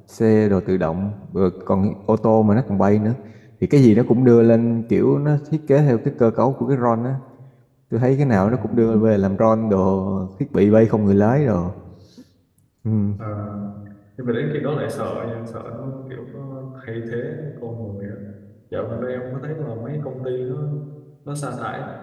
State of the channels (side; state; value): both; identical; correlation 1.00